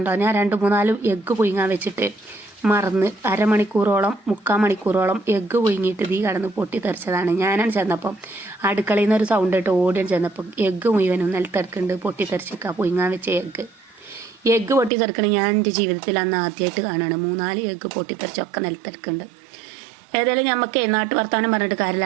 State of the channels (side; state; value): left; drops out; at 14.9 s